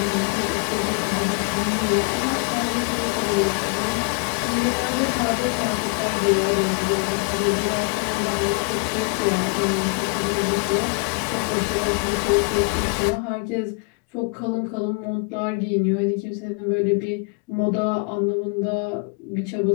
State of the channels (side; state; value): right; quieter; 34.1 dB